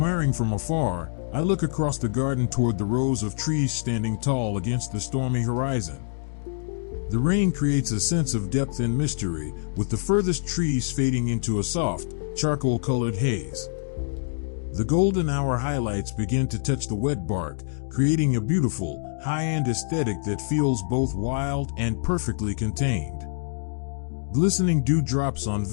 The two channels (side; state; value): right; silent; digital silence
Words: from afar, I look across the garden toward the rows of trees standing tall against the stormy horizon. The rain creates a sense of depth and mystery, with the furthest trees fading into a soft, charcoal-colored haze. The golden hour highlights begin to touch the wet bark, creating a beautiful, high-end aesthetic that feels both wild and perfectly contained. Glistening dewdrops on